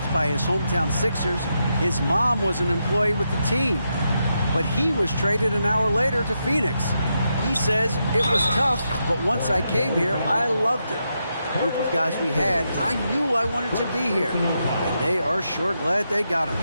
by his hometown Sixers, his mom was an employee with the team. But he was traded an hour later to Phoenix. He says, it was tough, but once I came here, I loved it. The group of guys we had, I knew I wanted to be here. And they are sure glad they got him,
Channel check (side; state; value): both; inverted; correlation -0.83